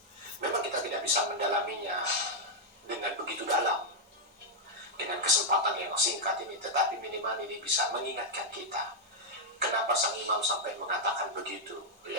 Memang kita tidak bisa mendalaminya dengan begitu dalam, dengan kesempatan yang singkat ini, tetapi minimal ini bisa mengingatkan kita. Kenapa sang imam sampai mengatakan begitu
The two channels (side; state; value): both; normal; correlation -0.03